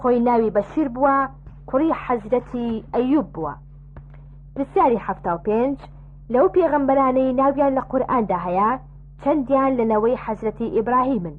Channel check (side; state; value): both; identical; correlation 1.00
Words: ناوی بەشیر بووە، کوڕی حەزرەتی ئەیوب بووە. پرسیاری 75 لەو پێغەمبەرانەی ناویان لە قورئاندا هەیە چەندیان لەنەوەی حەزرەتی ئیبراهیمن؟